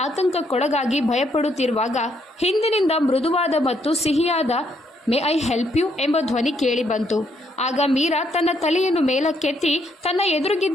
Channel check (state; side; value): normal; both; correlation 0.73